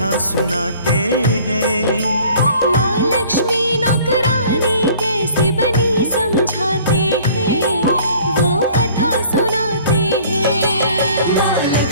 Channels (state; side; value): inverted; both; correlation -0.52